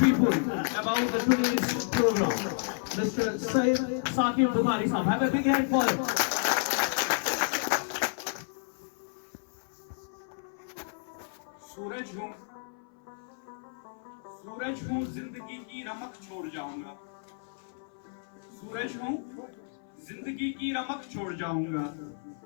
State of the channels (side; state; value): right; silent; 57 dB below the other